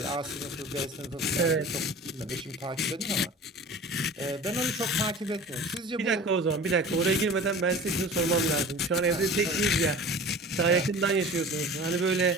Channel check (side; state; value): both; normal; correlation 0.39